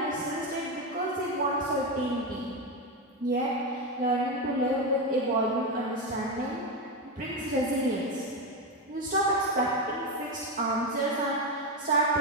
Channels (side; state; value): both; normal; correlation 0.11